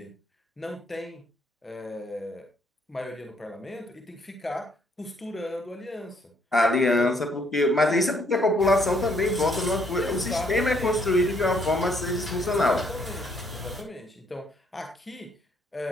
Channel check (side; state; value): both; normal; correlation 0.68